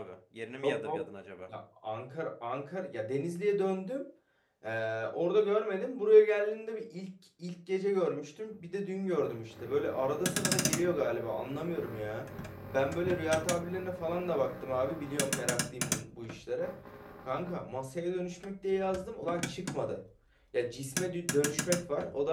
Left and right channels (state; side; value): identical; both; correlation 1.00